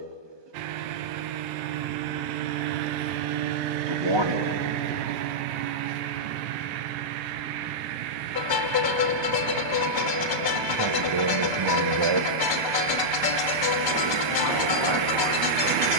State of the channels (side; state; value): left; late; 1.2 ms